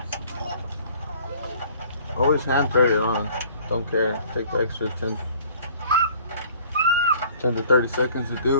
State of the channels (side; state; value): both; inverted; correlation -0.53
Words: Always hand press it on. Don't care. Take the extra 10 to 30 seconds to